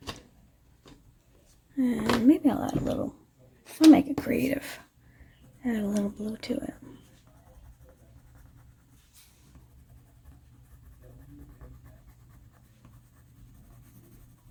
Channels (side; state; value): both; identical; correlation 1.00